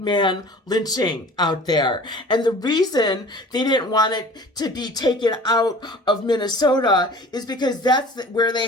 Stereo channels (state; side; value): normal; both; correlation 0.44